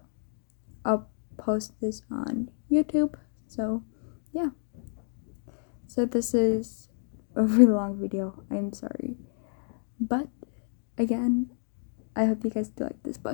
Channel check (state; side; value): silent; right; digital silence